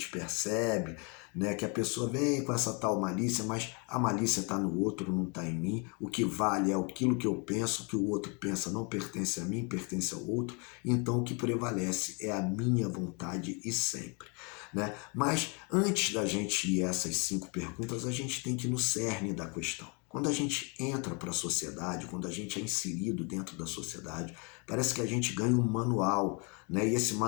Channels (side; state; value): right; quieter; 33.1 dB